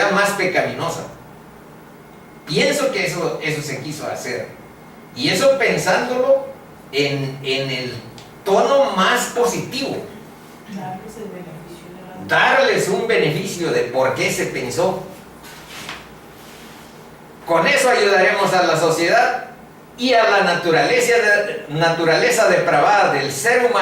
más pecaminosa. Pienso que eso se quiso hacer. Y eso pensándolo en el tono más positivo. Darles un beneficio de por qué se pensó. Con eso ayudaremos a la sociedad y a la naturaleza depravada del ser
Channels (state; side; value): identical; both; correlation 1.00